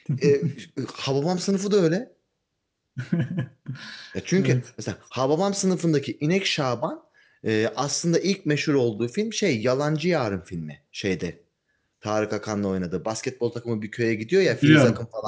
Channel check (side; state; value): both; identical; correlation 1.00